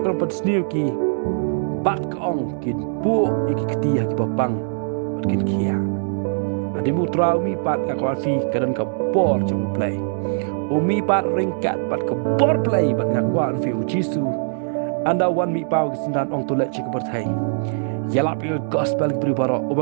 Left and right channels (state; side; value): silent; left; digital silence